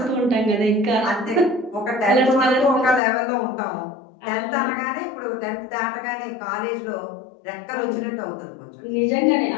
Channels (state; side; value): drops out; right; at 3.0 s